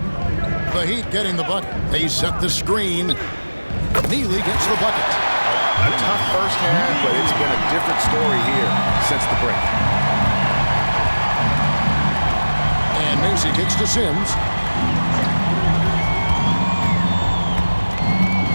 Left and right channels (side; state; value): both; inverted; correlation -1.00